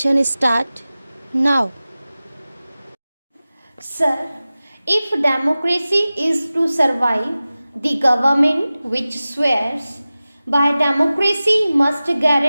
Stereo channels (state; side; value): inverted; both; correlation -0.97